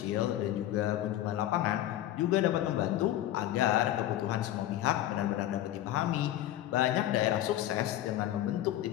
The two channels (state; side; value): quieter; right; 13.2 dB